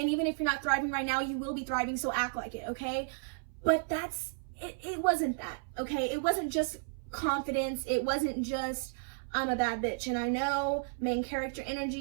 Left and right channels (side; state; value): left; silent; 56 dB below the other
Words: even if you're not thriving right now, you will be thriving, so act like it, okay? But it wasn't that, okay? It wasn't just confidence. It wasn't just, I'm a bad bitch. And I know, main character